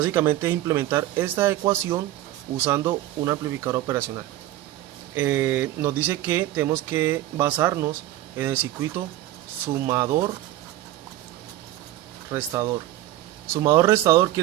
es implementar esta ecuación usando un amplificador operacional. Nos dice que tenemos que basarnos en el circuito sumador-restador. Sumador-restador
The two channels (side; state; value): left; quieter; 14.6 dB